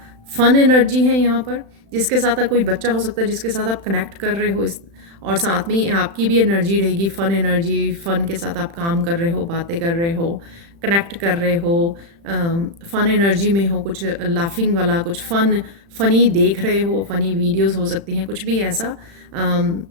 फन एनर्जी है यहाँ पर, जिसके साथ कोई बच्चा हो सकता है जिसके साथ आप कनेक्ट कर रहे हो, इस और साथ में आपकी भी एनर्जी रहेगी, फ़न एनर्जी। फ़न के साथ आप काम कर रहे हो, बातें कर रहे हो, कनेक्ट कर रहे हो, फ़न एनर्जी में हो, कुछ लाफिंग वाला, कुछ फ़नी देख रहे हो, फ़नी वीडियोस हो सकती हैं, कुछ भी ऐसा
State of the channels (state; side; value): late; left; 35 ms